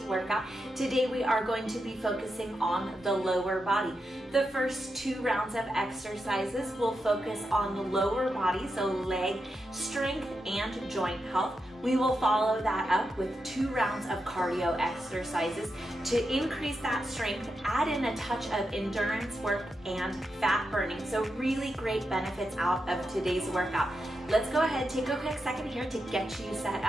workout. Today we are going to be focusing on the lower body. The first 2 rounds of exercises will focus on the lower body, so leg strength and joint health. We will follow that up with 2 rounds of cardio exercises to increase that strength, add in a touch of endurance work and fat burning. So really great benefits out of today's workout. Let's go ahead, take a quick second here to get you set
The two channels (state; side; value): normal; both; correlation 0.87